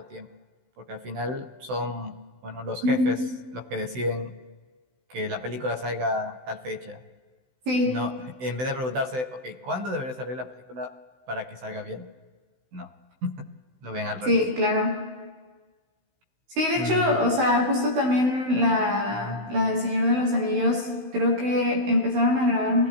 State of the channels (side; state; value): left; late; 16 ms